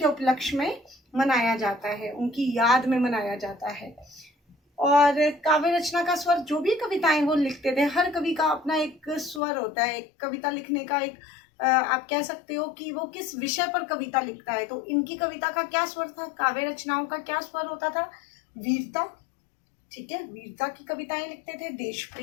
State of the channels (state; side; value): drops out; right; at 9.4 s